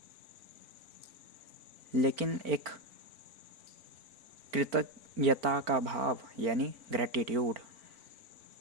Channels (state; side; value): late; left; 4.4 ms